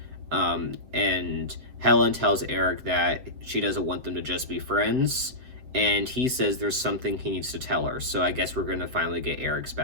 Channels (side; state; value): left; late; 7.7 ms